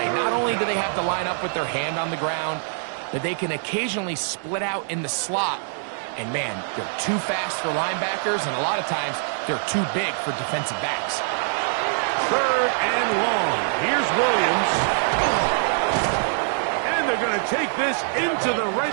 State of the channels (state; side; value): silent; left; digital silence